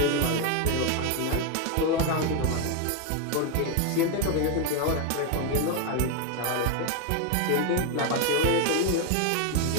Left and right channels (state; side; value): different; both; correlation 0.01